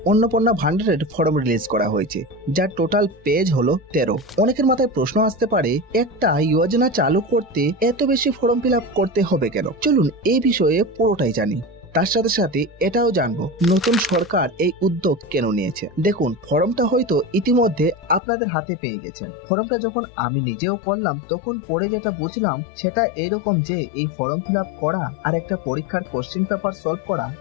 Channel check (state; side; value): drops out; right; at 18.2 s